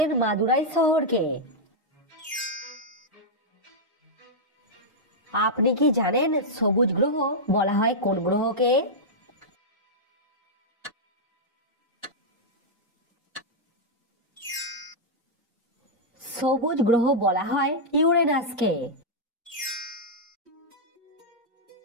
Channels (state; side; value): normal; both; correlation -0.06